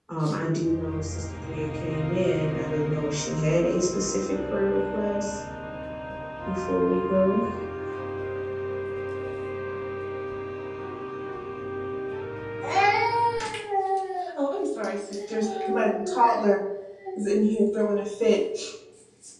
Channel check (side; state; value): both; identical; correlation 1.00